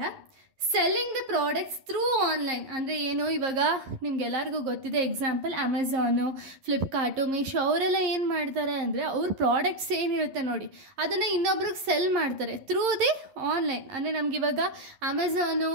selling the products through online. ಅಂದರೆ ಏನು, ಇವಾಗ ನಿಮ್ಗೆಲ್ಲರಿಗೂ ಗೊತ್ತಿದೆ, ಎಕ್ಸಾಂಪಲ್ ಅಮೆಝಾನು, ಫ್ಲಿಪ್ಕಾರ್ಟು, ಮೀಶೋ ಅವರೆಲ್ಲ ಏನು ಮಾಡ್ತಾರೆ ಅಂದರೆ, ಅವ್ರ ಪ್ರಾಡಕ್ಟ್ಸ್ ಏನಿರುತ್ತೆ ನೋಡಿ ಅದನ್ನು ಇನ್ನೊಬ್ರಿಗೆ ಸೆಲ್ ಮಾಡ್ತಾರೆ ಥ್ರೂ ದಿ ಆನ್ಲೈನ್. ಅಂದರೆ ನಮಗಿವಾಗ ಅಮೆಝಾನು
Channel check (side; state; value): left; late; 11 ms